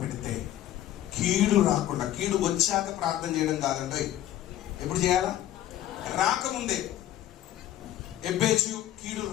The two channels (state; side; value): quieter; right; 12.8 dB